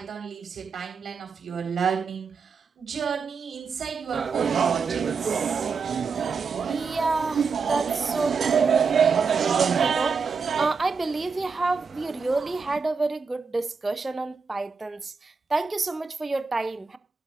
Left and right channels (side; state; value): left; quieter; 5.2 dB